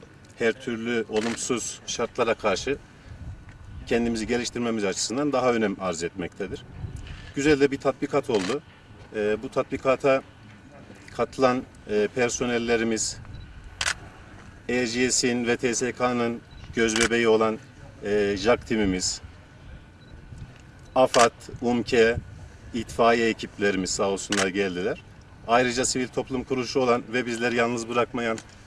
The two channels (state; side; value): identical; both; correlation 1.00